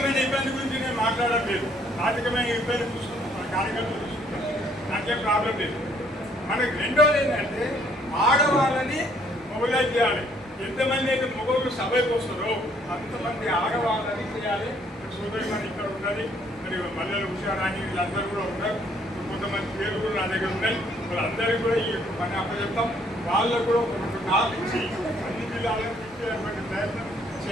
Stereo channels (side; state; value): both; normal; correlation 0.65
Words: ఇబ్బంది గురించి నేను మాట్లాడడం లేదు. ఆర్థికమైన ఇబ్బంది చూసుకుంటాం, మన కార్యకర్తలు చూసుకుంటాం, నాకేం ప్రాబ్లం లేదు. మనకి రెండోది ఏంటంటే ఆడవాళ్ళని మొబైలైజ్ చేయాలి. ఎంతమంది అయితే మగవాళ్ళు సభకు వస్తారో అంతమంది ఆడవాళ్ళని చేయాలి. సోదరి మన ఇక్కడ ఉన్నది, మరి మల్లెలు హుషారాణి వీళ్ళందరూ కూడా ఉన్నారు. కొంతమంది పేరు కూడా నా దగ్గర ఉన్నాయి. వాళ్ళందరికీ కూడా ఈ పని అప్పచెప్తాం. వాళ్ళకు కూడా ఒక కాల్ ఇచ్చి అన్ని జిల్లాలను తిప్పేటువంటి ప్రయత్నం